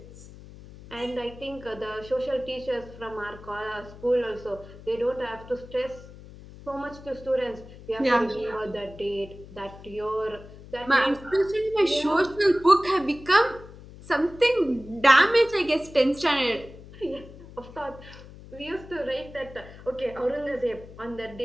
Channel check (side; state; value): left; noise; hum, 17 dB below the sound